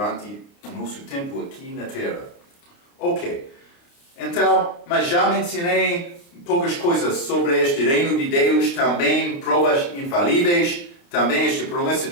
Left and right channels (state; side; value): late; right; 29 ms